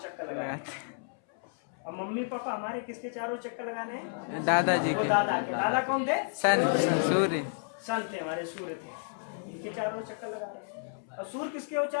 लगा रहे हैं। और मम्मी पापा हमारे किसके चारों चक्कर लगाने हैं? दादाजी वो के। दादा के। दादा कौन थे? सन, सूर्य। सन थे, हमारे सूर्य थे, इनके चारों ओर चक्कर लगा रहे हैं। और सूर्य किसके ओर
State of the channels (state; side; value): silent; right; 57 dB below the other